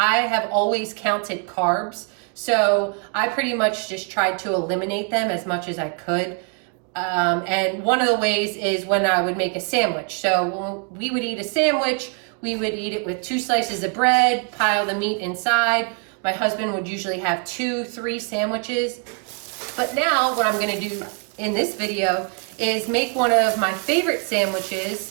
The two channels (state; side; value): quieter; left; 39.7 dB